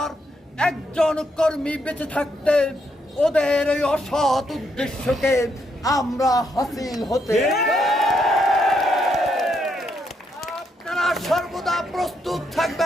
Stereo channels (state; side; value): normal; both; correlation 0.77